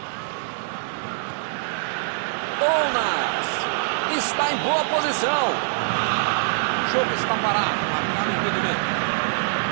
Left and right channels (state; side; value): silent; left; digital silence